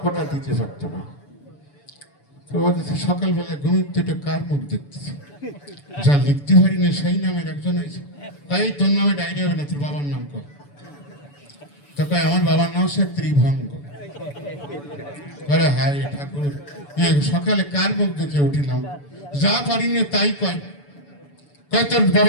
দিতে পারতো না। তো সকালবেলা ঘুমিয়ে কার মুখ দেখতেছে, যা লিখতে পারি না সেই নামের একজন আছে। তাই তোর নামে ডায়েরি হবে না, তোর বাবার নাম কর। তো কয় আমার বাবার নাম হচ্ছে ত্রিভঙ্গ। আরে হায় ঠাকুর, সকালে কার মুখ দেখে উঠিলাম, যা পারি না তাই কয়। কয় তোর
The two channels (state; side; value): late; right; 7.0 ms